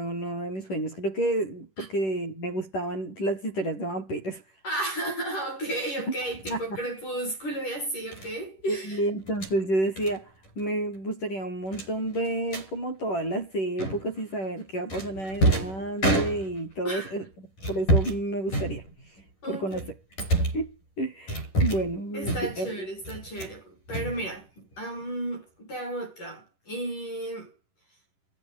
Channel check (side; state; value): right; late; 10 ms